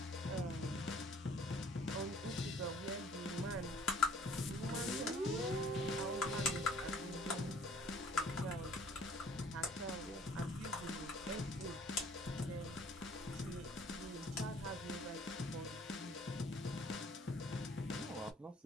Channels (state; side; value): normal; both; correlation 0.56